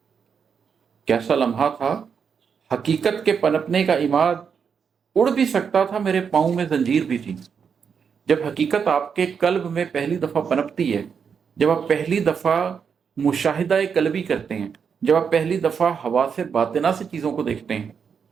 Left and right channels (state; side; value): quieter; left; 6.6 dB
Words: कैसा लम्हा था हकीकत के पनपने का इमाद, उड़ भी सकता था मेरे पाँव में जंजीर भी थी। जब हकीकत आपके कल्ब में पहली दफ़ा पनपती है, जब आप पहली दफ़ा मुशाहिदा कल्बी करते हैं, जब आप पहली दफ़ा हवा से बातिना से चीज़ों को देखते हैं,